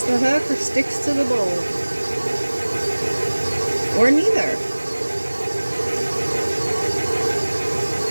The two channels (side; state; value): both; inverted; correlation -1.00